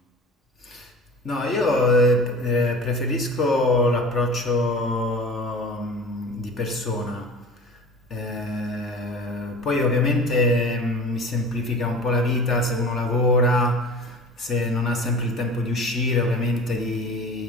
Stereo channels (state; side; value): normal; both; correlation 0.38